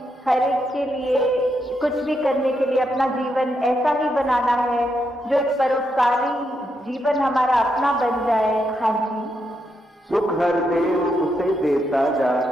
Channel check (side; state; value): both; normal; correlation 0.81